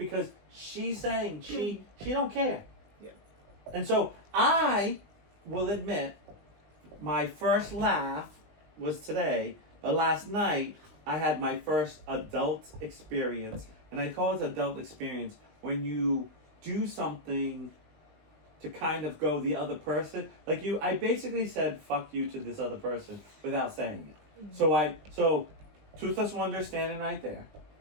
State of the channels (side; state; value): left; late; 20 ms